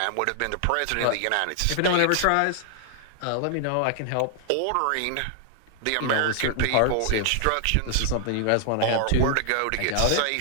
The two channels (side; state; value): both; different; correlation 0.00